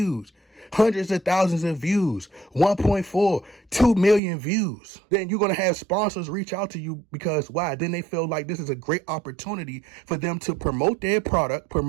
hundreds of thousands of views, 1.4, 2 million views, then you're going to have sponsors reach out to you because why? Then they feel like this is a great opportunity for them to promote their product,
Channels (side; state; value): left; drops out; at 4.2 s